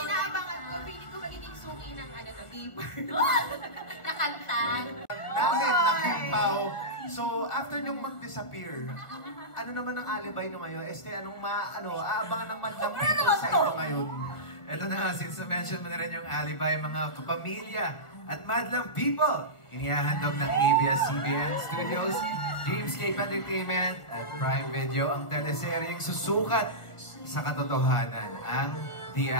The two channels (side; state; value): right; late; 1.5 ms